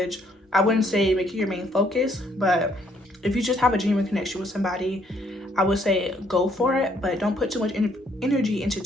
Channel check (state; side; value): normal; both; correlation 0.67